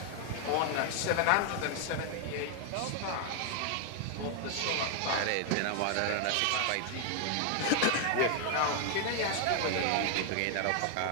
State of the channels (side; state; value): both; different; correlation 0.00